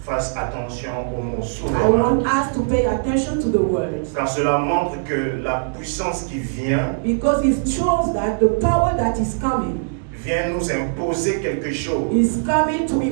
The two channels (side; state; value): left; silent; digital silence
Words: attention au mot I souverain, want us to pay attention to the words car cela montre que la puissance qui vient because it shows that the power that is coming vient nous imposer quelque chose, is coming to